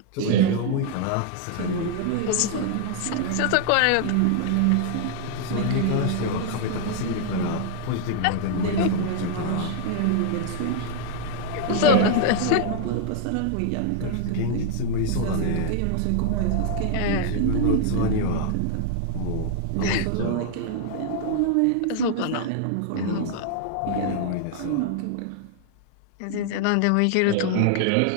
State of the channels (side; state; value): both; different; correlation -0.01